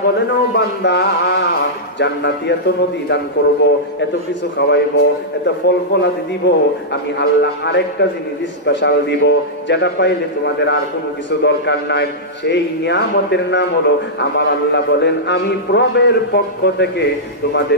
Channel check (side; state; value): both; normal; correlation -0.11